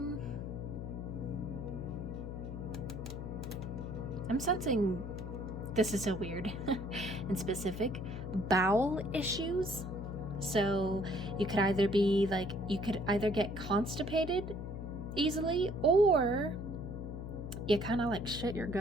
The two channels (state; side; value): noise; left; hum, 6 dB below the sound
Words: I'm sensing, this is so weird and specific, bowel issues. So you could either be like, you could either get constipated easily, or you kind of like shit your